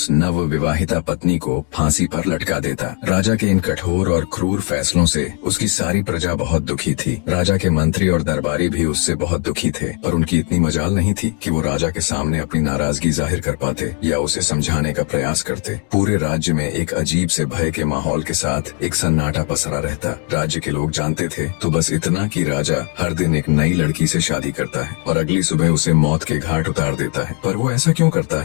नव विवाहिता पत्नी को फांसी पर लटका देता। राजा के इन कठोर और क्रूर फैसलों से उसकी सारी प्रजा बहुत दुखी थी। राजा के मंत्री और दरबारी भी उससे बहुत दुखी थे, पर उनकी इतनी मजाल नहीं थी कि वो राजा के सामने अपनी नाराजगी जाहिर कर पाते या उसे समझाने का प्रयास करते। पूरे राज्य में एक अजीब से भय के माहौल के साथ एक सन्नाटा पसरा रहता। राज्य के लोग जानते थे तो बस इतना कि राजा हर दिन एक नई लड़की से शादी करता है और अगली सुबह उसे मौत के घाट उतार देता है। पर वो ऐसा क्यों करता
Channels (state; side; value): quieter; right; 34.4 dB